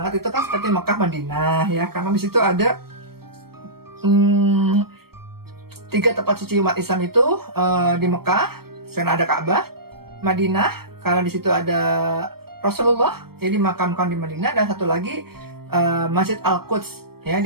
itu kan seperti Mekah, Madinah ya, karena di situ ada 3 tempat suci umat Islam itu di Mekah, karena ada Ka'bah, Madinah karena di situ ada Rasulullah, jadi dimakamkan di Madinah, dan satu lagi Masjid Al-Quds ya di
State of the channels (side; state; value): left; late; 0.95 ms